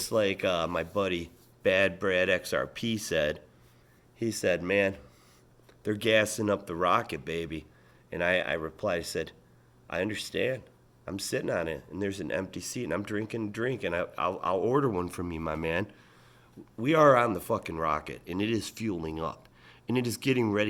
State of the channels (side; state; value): both; identical; correlation 1.00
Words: like my buddy Bad Brad XRP said, he said, man, they're gassing up the rocket, baby. And I replied, I said, I understand. I'm sitting on it, and there's an empty seat, and I'm drinking a drink, and I'll order one from you, my man. We are on the fucking rocket, and it is fueling up, and it is getting